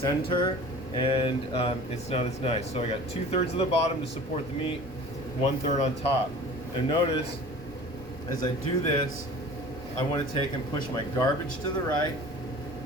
and it's not as nice. So I got 2/3 of the bottom to support the meat, 1/3 on top. And notice, as I do this, I want to take and push my garbage to the right,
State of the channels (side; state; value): both; normal; correlation 0.42